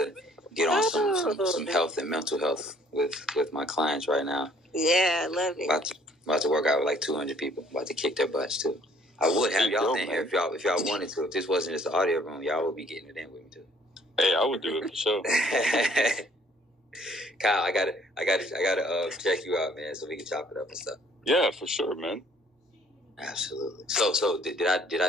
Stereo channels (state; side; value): normal; both; correlation 0.60